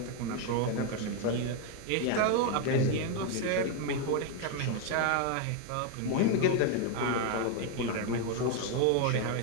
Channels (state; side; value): different; both; correlation 0.01